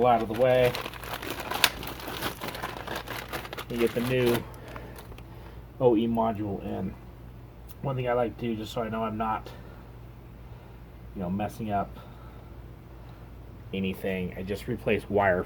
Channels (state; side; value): identical; both; correlation 1.00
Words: out of the way and get the new OE module in. One thing I like to do, just so I know I'm not, messing up anything, I just replace wire